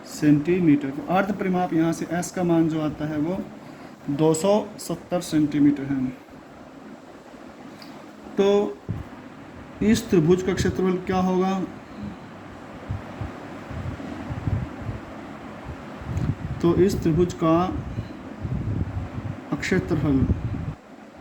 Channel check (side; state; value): both; identical; correlation 1.00